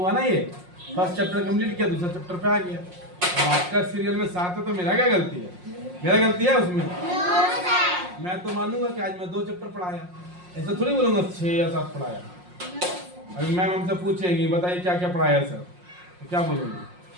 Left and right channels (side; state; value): left; late; 5.6 ms